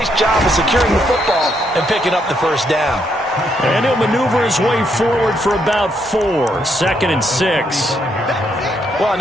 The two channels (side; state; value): both; normal; correlation 0.75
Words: job of securing the football and picking up the first down. And he'll maneuver his way forward for about 4. 2nd and 6. Well, on